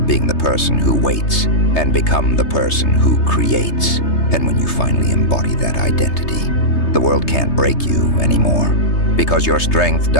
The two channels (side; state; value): right; late; 3.3 ms